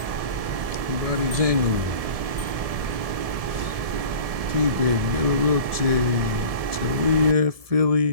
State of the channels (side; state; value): left; late; 1.7 ms